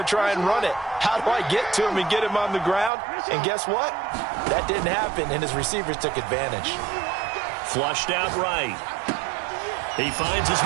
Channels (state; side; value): drops out; left; at 2.9 s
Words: to try and run it. How do I get to him and get him on the ground? And guess what? That didn't happen, and his receivers took advantage. Flushed out right. He finds his